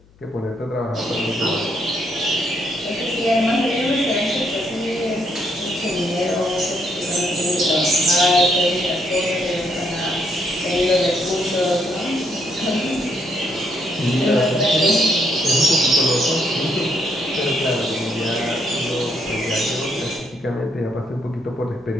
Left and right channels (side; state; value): left; noise; hum, 29 dB below the sound